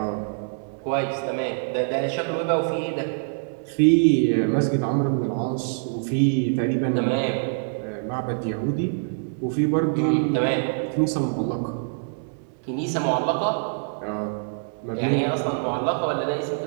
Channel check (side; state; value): left; silent; digital silence